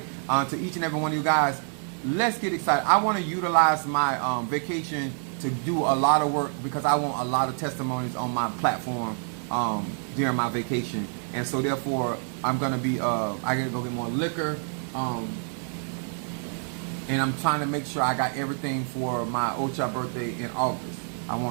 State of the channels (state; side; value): silent; left; 55 dB below the other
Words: To each and every one of you guys, let's get excited. I want to utilize my vacation to do a lot of work, because I want a lot of testimonies on my platform during my vacation. And so therefore, I'm gonna be I gotta go get more liquor. And I'm trying to make sure I got everything for my Ocha birthday in August. I